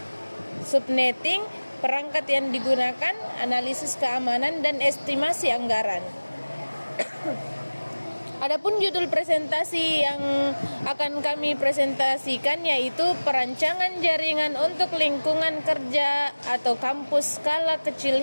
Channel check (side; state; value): both; inverted; correlation -1.00